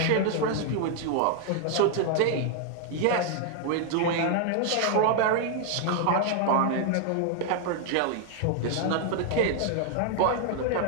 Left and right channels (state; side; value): different; both; correlation 0.00